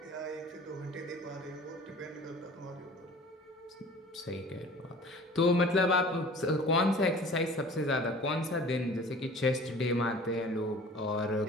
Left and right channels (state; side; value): normal; both; correlation 0.45